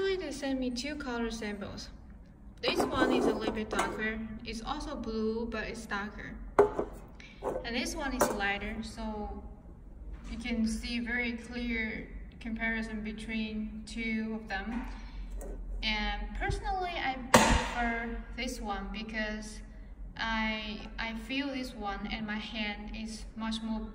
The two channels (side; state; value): both; identical; correlation 1.00